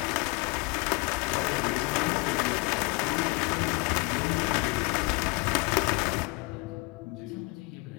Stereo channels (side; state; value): right; quieter; 26.1 dB